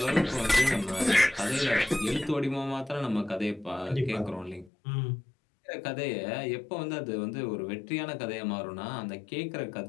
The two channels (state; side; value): drops out; right; at 4.7 s